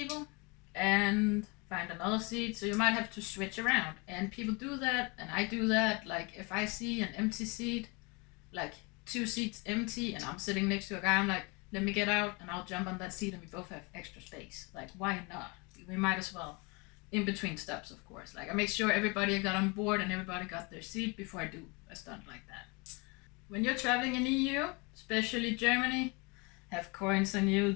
and find another seat. So you might have to switch around, and people do that, and I do that. Like if I see an empty seat, like 2 seats empty, and I'm sitting next to a guy, I'm like, let me get out and I'll jump on that seat and we both have extra space. Like, why not? We might as well. In between steps, of course. Like, I make sure everybody got on board and everybody got their seat before I do a stunt like that. When you're traveling in EU, especially Germany, have coins on you.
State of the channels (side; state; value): right; quieter; 28.9 dB